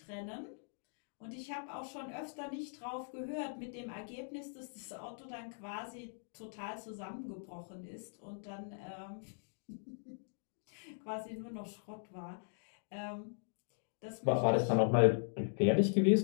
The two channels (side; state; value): right; silent; digital silence